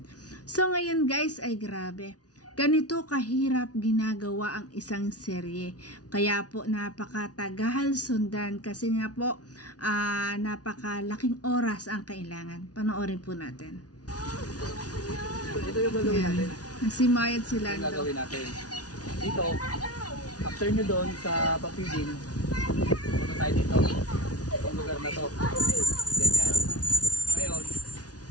So ngayon guys ay grabe. Ganito kahirap ginagawa ang isang serye. Kaya po napakatagal sundan kasi nga po napakalaking oras ang kailangan. Panoorin po natin. Ito yung gagawin natin. Nagsimayad sila. Ito yung gagawin natin. Dito, after nyo doon sa papiding, punta tayo dito. Itong lugar na to. Ganyan. Ngayon,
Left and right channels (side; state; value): right; late; 0.68 ms